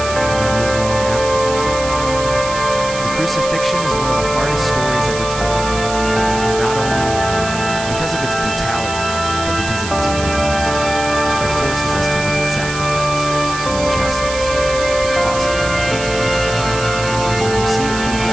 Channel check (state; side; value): noise; right; hiss, 9 dB below the sound